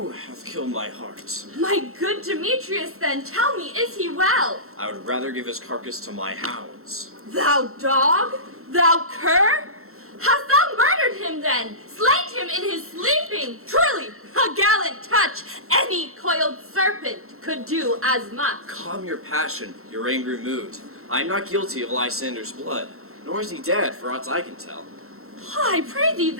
have killed my heart. My good Demetrius, then, tell me, is he well? I would rather give his carcass to my hounds. Thou dog? Thou cur? Hast thou murdered him then? Slain him in his sleeping? Truly, a gallant touch. Any coiled serpent could do as much. Calm your passion, your angry mood. I am not guilty of Lysander's blood, nor is he dead, for aught I can tell. I pray thee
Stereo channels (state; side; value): late; left; 0.63 ms